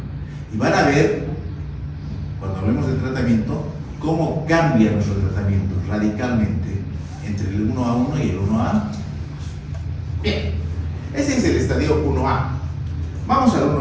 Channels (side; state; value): both; identical; correlation 1.00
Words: Y van a ver, cuando hablemos de tratamiento, cómo cambia nuestro tratamiento radicalmente entre el 1A1 y el 1A2. Bien, ese es el estadio 1A. Vamos al